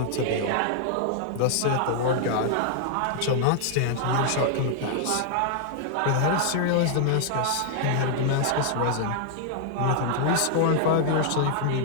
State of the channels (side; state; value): both; different; correlation -0.01